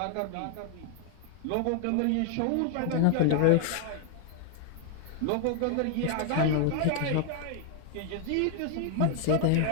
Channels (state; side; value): different; both; correlation 0.00